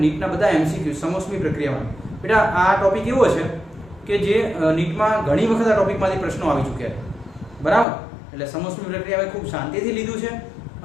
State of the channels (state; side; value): drops out; right; at 7.9 s